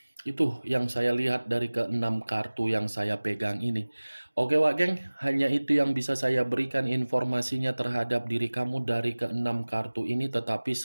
Itu yang saya lihat dari ke-6 kartu yang saya pegang ini. Oke Wak Geng, hanya itu yang bisa saya berikan informasinya terhadap diri kamu dari ke-6 kartu ini. Tetapi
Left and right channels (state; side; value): inverted; both; correlation -1.00